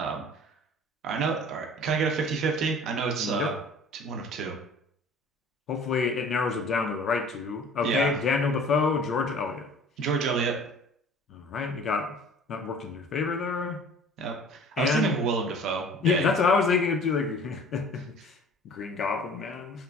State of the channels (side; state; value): both; normal; correlation 0.47